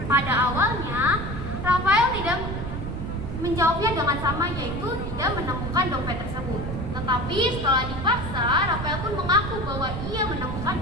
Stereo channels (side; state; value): right; noise; rumble, 5 dB below the sound